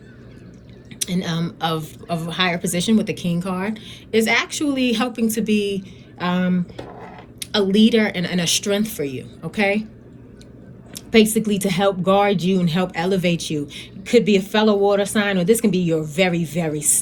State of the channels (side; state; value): both; identical; correlation 1.00